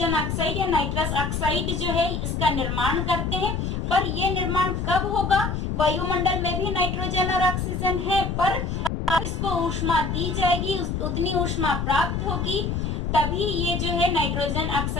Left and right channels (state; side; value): noise; left; rumble, 2 dB below the sound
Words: ऑक्साइड या नाइट्रस ऑक्साइड जो है इसका निर्माण करते हैं। पर ये निर्माण कब होगा? वायुमंडल में भी नाइट्रोजन और ऑक्सीजन है, पर इसको ऊष्मा दी जाएगी, उतनी ऊष्मा प्राप्त होगी तभी ये जो है नाइट्रोजन